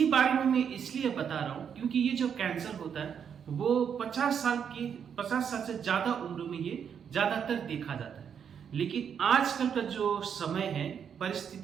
बारे में मैं इसलिए बता रहा हूं क्योंकि ये जो कैंसर होता है वो 50 साल से ज्यादा उम्र में ये ज्यादातर देखा जाता है। लेकिन आजकल का जो समय है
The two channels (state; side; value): quieter; left; 7.7 dB